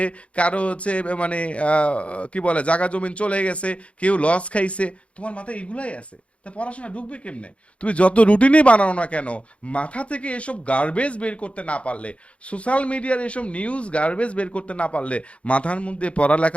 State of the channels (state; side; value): late; right; 0.062 ms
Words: কারো হচ্ছে মানে কি বলে জাগা জমিন চলে গেছে, কেউ লস খাইছে, তোমার মাথায় এগুলাই আছে। তা পড়াশোনা ঢুকবে কেমনে? তুমি যত রুটিনই বানাও না কেন, মাথা থেকে এসব গার্বেজ বের করতে না পারলে, সোশ্যাল মিডিয়ার এসব নিউজ গার্বেজ বের করতে না পারলে মাথার মধ্যে